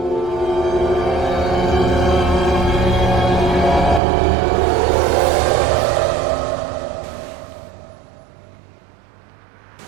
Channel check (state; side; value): drops out; left; at 4.0 s